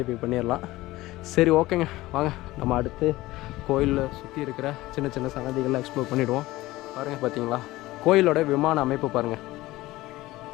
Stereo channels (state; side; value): quieter; right; 18.1 dB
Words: பண்ணிடலாம். சரி, ஓகேங்க, வாங்க நம்ம அடுத்து கோயிலில் சுற்றி இருக்கிற சின்ன சின்ன சன்னதிகளை எக்ஸ்ப்ளோர் பண்ணிவிடுவோம். பாருங்கள், பார்த்தீங்களா கோயிலோட விமான அமைப்பு பாருங்கள்,